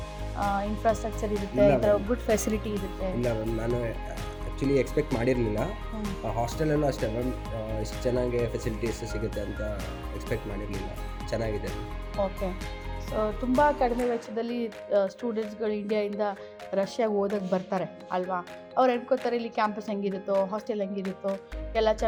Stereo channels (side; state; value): both; identical; correlation 1.00